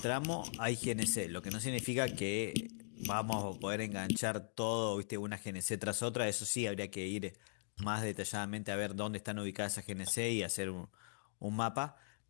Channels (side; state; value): right; silent; digital silence